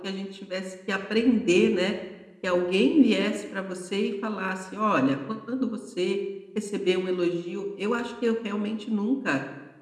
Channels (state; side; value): identical; both; correlation 1.00